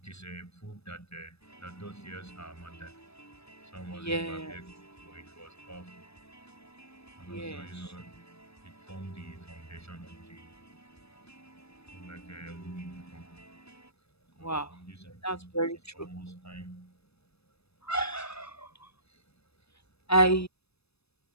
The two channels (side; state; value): right; late; 0.78 ms